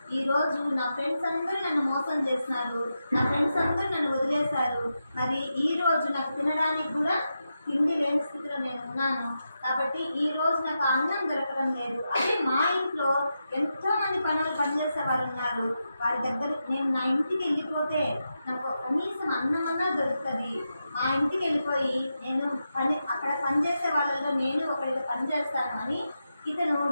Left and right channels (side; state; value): both; inverted; correlation -0.88